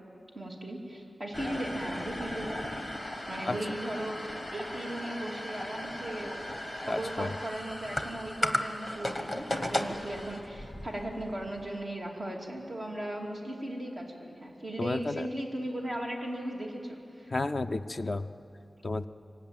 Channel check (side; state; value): both; normal; correlation 0.94